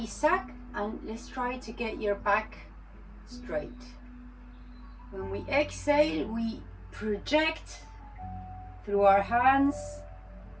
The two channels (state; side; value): identical; both; correlation 1.00